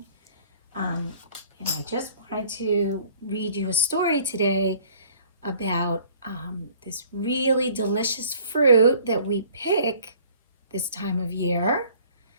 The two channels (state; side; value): inverted; both; correlation -0.54